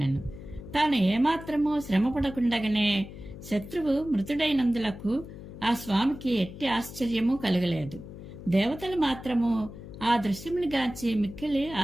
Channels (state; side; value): noise; left; hum, 13 dB below the sound